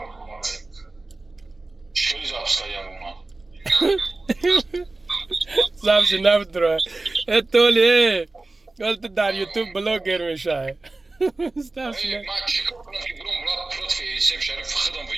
хеле запускаям уна записи намедура толи ту дар ютуб блогер мешавӣ ман чӣ кор кунам ки бурам бурад против эсем шариф худам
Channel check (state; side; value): quieter; left; 3.1 dB